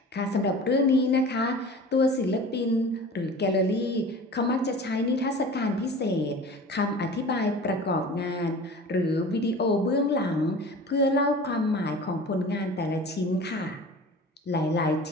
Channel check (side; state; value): both; normal; correlation 0.39